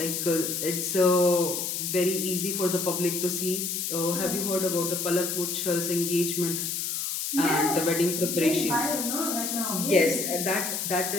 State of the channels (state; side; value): noise; left; hiss, 2 dB below the sound